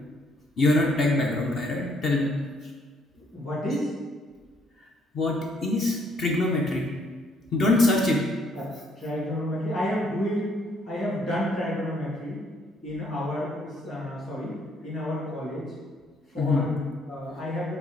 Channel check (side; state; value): both; normal; correlation 0.68